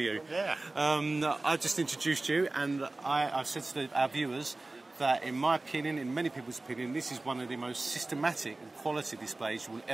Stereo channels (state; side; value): quieter; left; 3.0 dB